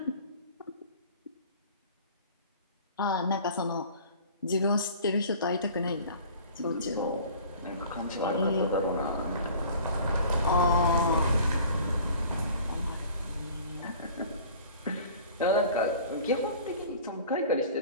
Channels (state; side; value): inverted; both; correlation -0.46